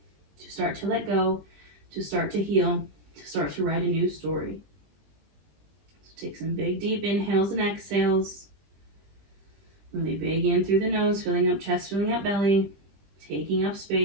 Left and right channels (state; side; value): late; left; 20 ms